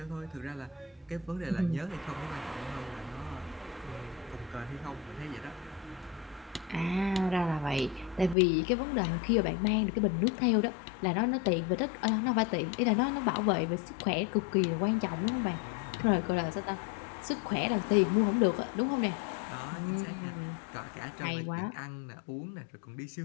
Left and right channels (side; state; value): right; drops out; at 8.3 s